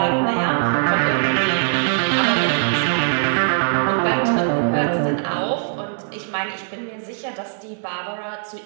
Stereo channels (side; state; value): left; silent; 65 dB below the other